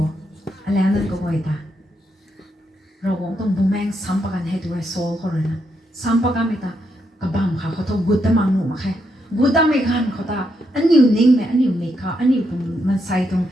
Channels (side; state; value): both; normal; correlation 0.80